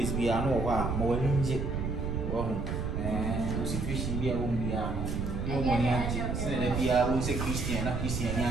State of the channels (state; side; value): noise; right; rumble, 2 dB below the sound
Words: be a no while, more inject, and was a fishing beer whom we are no money, Senebia was a Christian, not Christian.